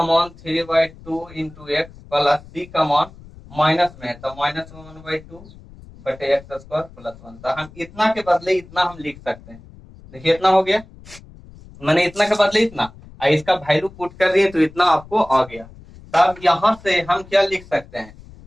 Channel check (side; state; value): left; noise; rumble, 21 dB below the sound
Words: मान 3/2 इंटू एक्स प्लस सी का मान माइनस में है तो माइनस में 1/2 बटे एक्स स्क्वायर प्लस 1। तो हम इतना के बदले इतना हम लिख सकते हैं, देखिए इतना हो गया, मैंने इतना के बदले इतना, इसका वैल्यू पुट कर दिए तो इतना आपको आ गया। तब यहाँ से हम क्या लिख सकते हैं,